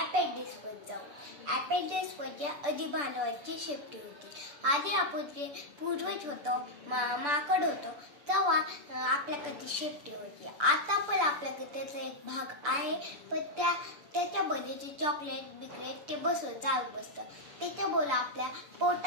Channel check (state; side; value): late; left; 6.9 ms